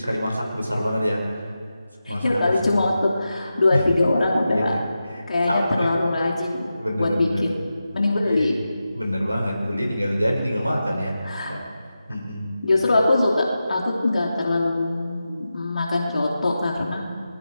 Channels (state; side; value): inverted; both; correlation -0.91